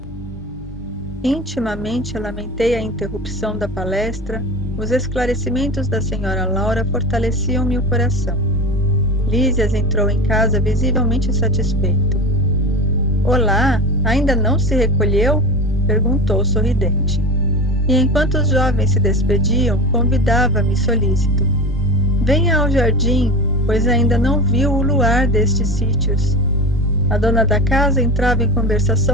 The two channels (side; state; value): both; normal; correlation 0.28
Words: Intimamente lamentei a interrupção da palestra. Os esclarecimentos da senhora Laura fortaleciam-me o coração. Lísias entrou em casa visivelmente satisfeito. Olá, ainda não se recolheu? Perguntou sorridente. E enquanto os jovens se despediam, convidava-me solícito. Venha ao jardim, pois ainda não viu o luar destes sítios. A dona da casa entrava em